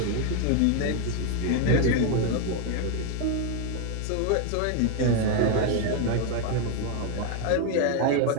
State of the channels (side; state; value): both; different; correlation 0.01